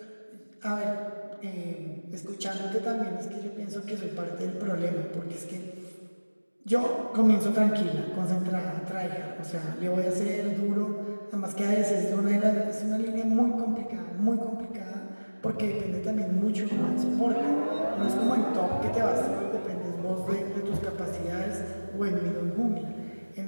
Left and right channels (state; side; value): inverted; both; correlation -1.00